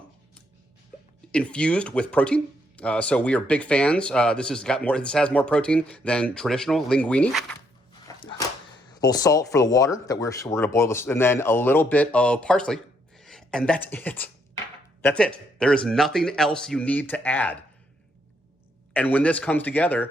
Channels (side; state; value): both; normal; correlation 0.74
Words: infused with protein. So we are big fans. This has more protein than traditional linguini. A little salt for the water that we're going to boil this, and then a little bit of parsley, and that's it. That's it. There is nothing else you need to add. And when this comes